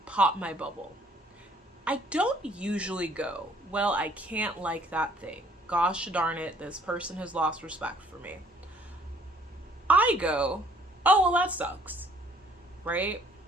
pop my bubble, I don't usually go, well, I can't like that thing. Gosh darn it, this person has lost respect for me. I go, oh, well, that sucks, right?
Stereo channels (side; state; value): both; normal; correlation 0.60